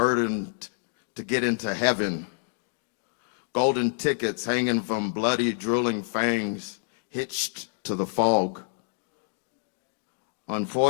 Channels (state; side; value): silent; right; digital silence